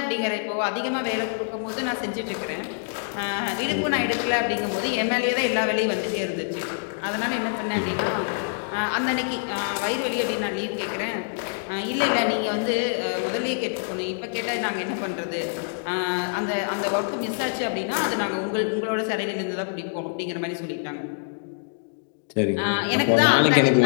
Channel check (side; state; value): right; silent; digital silence